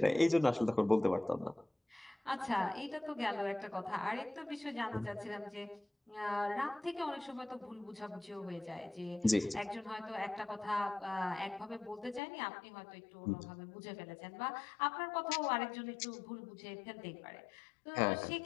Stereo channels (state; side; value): drops out; right; at 12.2 s